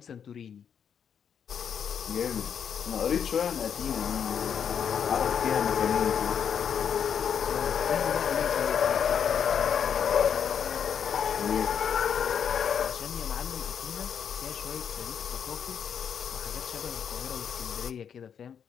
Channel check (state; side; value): quieter; right; 7.8 dB